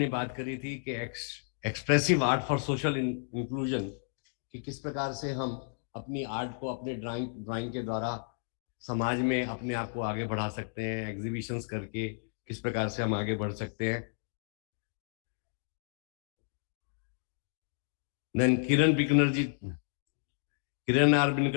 बात करी थी कि expressive art for social inclusion, कि किस प्रकार से हम अपनी आर्ट को अपने ड्राइंग के द्वारा समाज में अपने आप को आगे बढ़ा सकते हैं, एग्जीबिशंस करके किस प्रकार से हम आगे बढ़ सकते हैं। देन किरण आर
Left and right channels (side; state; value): right; silent; digital silence